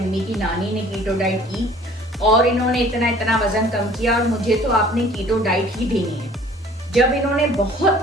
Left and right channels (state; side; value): normal; both; correlation 0.51